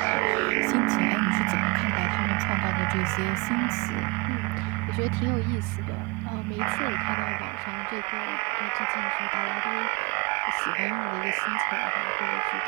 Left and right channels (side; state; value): left; quieter; 26.6 dB